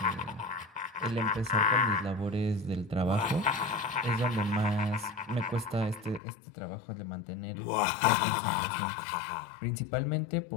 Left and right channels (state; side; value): drops out; right; at 6.2 s